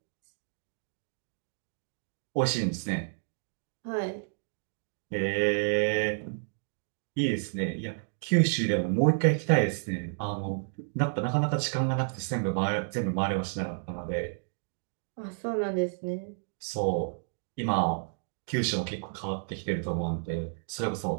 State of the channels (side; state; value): left; silent; digital silence